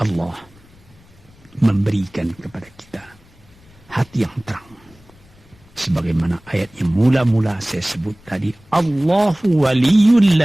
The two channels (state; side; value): noise; left; rumble, 27 dB below the sound